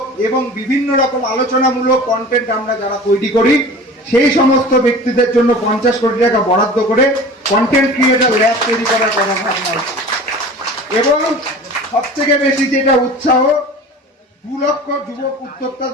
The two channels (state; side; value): normal; both; correlation 0.39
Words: এবং বিভিন্ন রকম আলোচনামূলক কন্টেন্ট আমরা যারা তৈরি করি, সেই সমস্ত ব্যক্তিদের জন্য 50 কোটি টাকা বরাদ্দ করে কন্টেন্ট ক্রিয়েটর ল্যাব তৈরি করার কথা ভাবনা হচ্ছে। এবং সবথেকে বেশি যেটা উৎসাহ, 2 লক্ষ যুবক